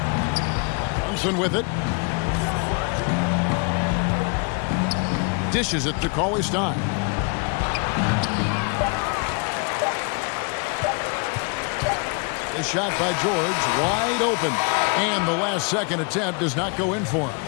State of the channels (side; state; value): right; quieter; 34.1 dB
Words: Brunson with it. Dishes it to Cauley Stein. The shot by George, wide open. And the last second attempt does not go in for him.